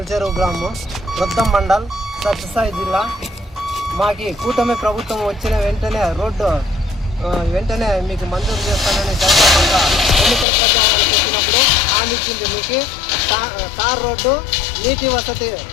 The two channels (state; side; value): drops out; right; at 10.5 s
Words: చెరువు గ్రామం, వృద్ధం మండల్, సత్యసాయి జిల్లా. మాకి కూటమి ప్రభుత్వం వచ్చిన వెంటనే రోడ్డు వెంటనే మీకు మంజూరు చేస్తానని జగన్మోహన్ ఎన్నికల ప్రచారం చేసినప్పుడు హామీ ఇచ్చింది. మీకు తార్ రోడ్డు, నీటి వసతి